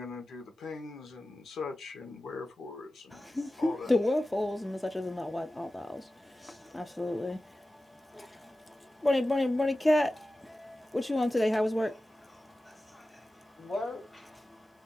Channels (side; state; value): both; normal; correlation 0.95